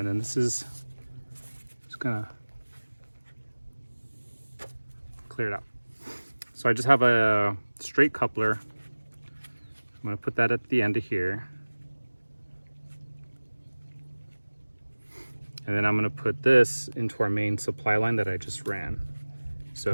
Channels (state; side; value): inverted; both; correlation -1.00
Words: then this is just gonna clear it out. So I just have a straight coupler. I'm gonna put that at the end of here. And then I'm gonna put this into our main supply line that I just ran.